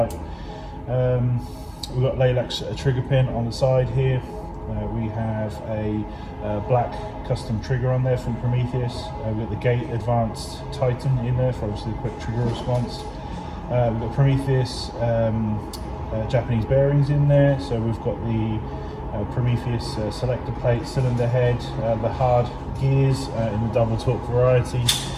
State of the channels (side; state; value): both; identical; correlation 1.00